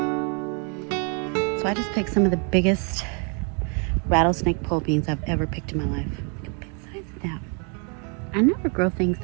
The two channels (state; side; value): quieter; left; 37.3 dB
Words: So I just picked some of the biggest rattlesnake pole beans I've ever picked in my life. Look at the big size of that. I never grow things